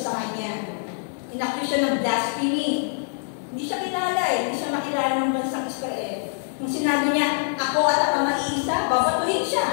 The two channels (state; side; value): silent; right; digital silence